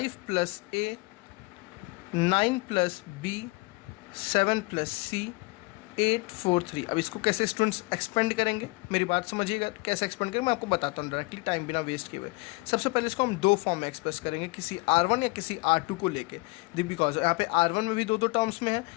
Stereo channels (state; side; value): quieter; right; 26.2 dB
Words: प्लस ए, 9 प्लस बी, 7 प्लस सी, 8 4 3। अब इसको कैसे स्टूडेंट्स एक्सपेंड करेंगे, मेरी बात समझिएगा, कैसे एक्सपेंड करेंगे मैं आपको बताता हूँ डायरेक्टली, टाइम बिना वेस्ट किए हुए। सबसे पहले इसको हम दो फॉर्म में एक्सप्रेस करेंगे, किसी R1 या किसी R2 को लेके। बिकॉज यहाँ पे R1 में भी दो टर्म्स में है,